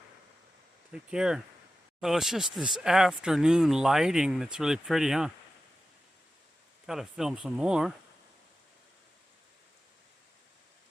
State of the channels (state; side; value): normal; both; correlation 0.93